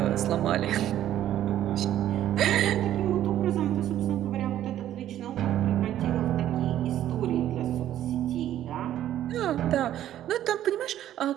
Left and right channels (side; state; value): left; quieter; 12.0 dB